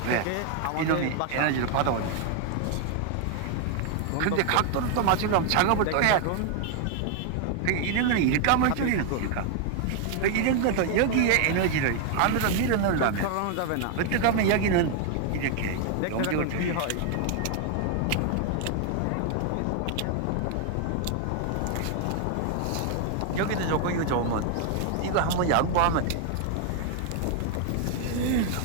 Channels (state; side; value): different; both; correlation 0.00